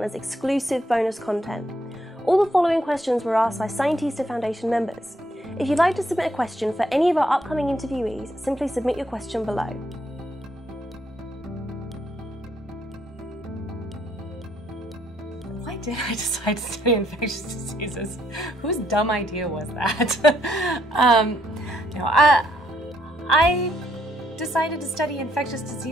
exclusive bonus content. All the following questions were asked by Scientista Foundation members. If you'd like to submit a question for any of our upcoming interviewees, simply submit your question below. Why did I decide to study infectious diseases? Whose dumb idea was that? I decided to study infectious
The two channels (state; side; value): normal; both; correlation 0.72